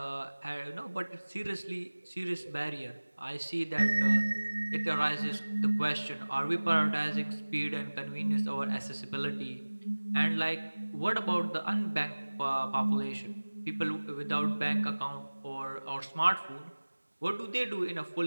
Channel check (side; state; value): both; inverted; correlation -1.00